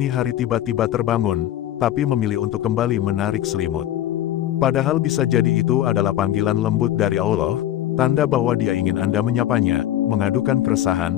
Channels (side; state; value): right; quieter; 12.5 dB